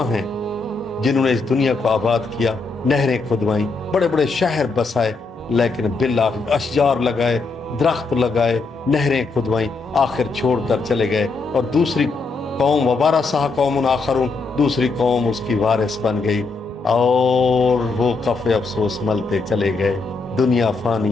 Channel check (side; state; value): right; quieter; 4.0 dB